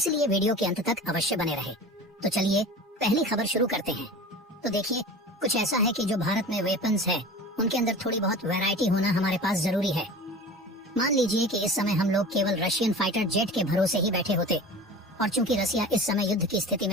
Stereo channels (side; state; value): both; normal; correlation 0.37